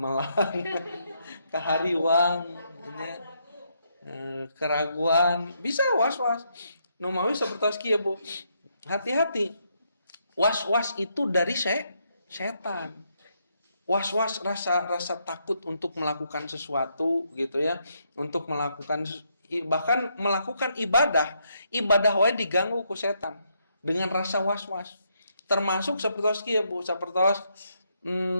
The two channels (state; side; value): inverted; both; correlation -0.77